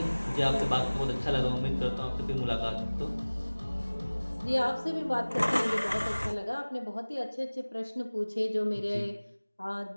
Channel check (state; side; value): inverted; both; correlation -1.00